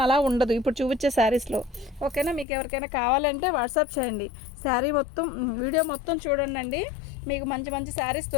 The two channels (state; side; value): drops out; right; at 2.5 s